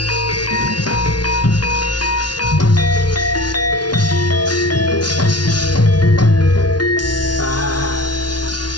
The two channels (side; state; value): right; late; 0.70 ms